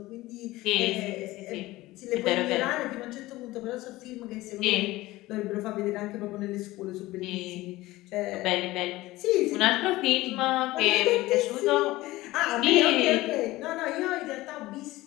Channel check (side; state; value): right; quieter; 18.4 dB